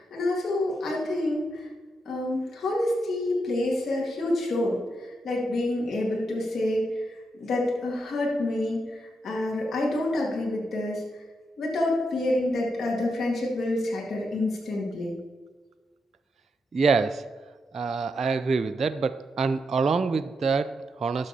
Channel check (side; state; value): both; normal; correlation 0.83